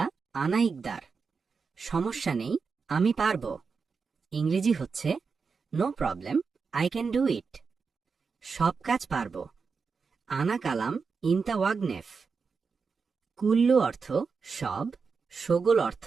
আনা ইকদার, সমস্যা নেই আমি পারব। ইংরেজি হচ্ছে no problem I can do it, সব কাজ পারব। আনা কালাম ইনতা ওয়াগনেফ। কুল্লু অর্থ সব, শগল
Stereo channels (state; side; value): quieter; left; 5.2 dB